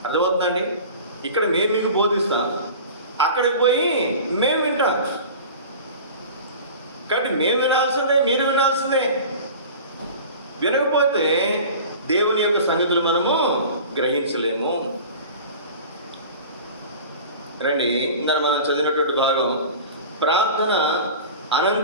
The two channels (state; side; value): inverted; both; correlation -0.38